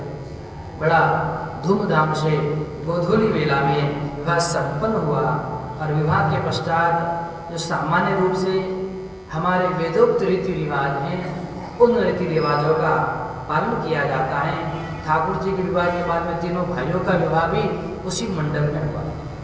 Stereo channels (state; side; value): identical; both; correlation 1.00